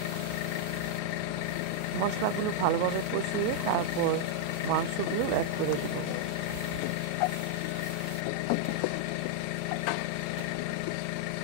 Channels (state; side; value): different; both; correlation -0.01